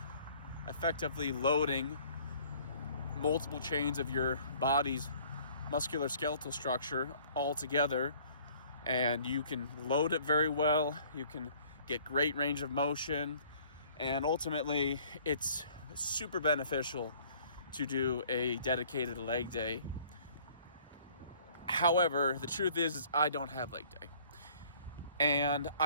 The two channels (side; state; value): both; inverted; correlation -0.55